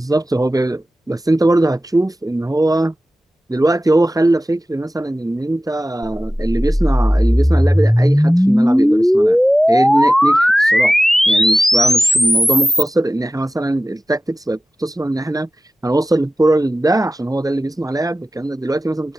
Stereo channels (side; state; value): both; normal; correlation 0.94